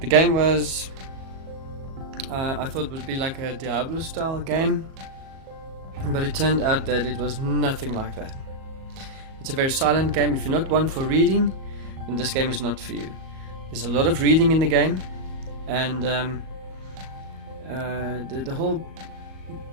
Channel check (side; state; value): left; late; 37 ms